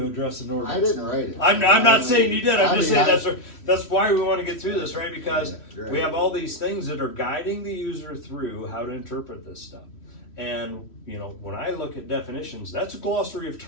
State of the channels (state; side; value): late; right; 3.1 ms